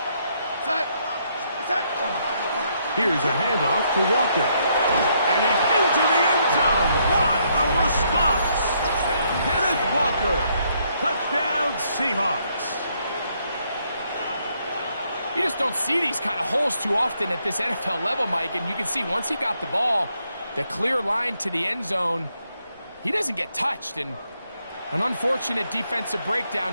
Here's a handoff to Walker. And he's into the end zone. What a response. Kenneth Walker. Touchdown, Seahawks. You just don't see these kind of holes too often at this NFL level, Mike. And you can see once he got the ball, the clear line to the end zone, he doesn't get touched. And an unfortunate defensive breakdown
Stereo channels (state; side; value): inverted; both; correlation -0.73